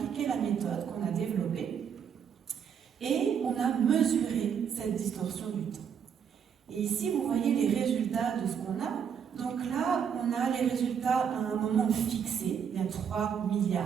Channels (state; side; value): quieter; left; 7.6 dB